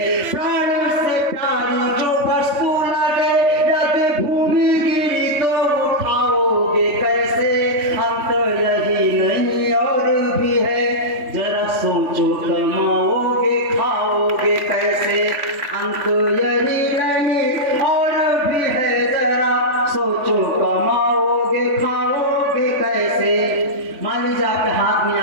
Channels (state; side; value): late; left; 3.5 ms